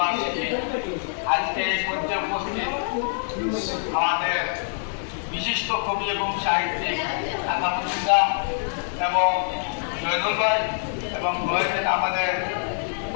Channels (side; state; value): right; silent; digital silence